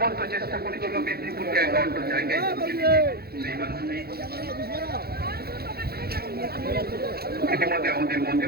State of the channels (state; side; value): late; left; 0.45 ms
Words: চেষ্টা করেছিল মেদিনীপুরকে এক অন্য জায়গায় সেই মানুষটি ইতিমধ্যে আমাদের মধ্যে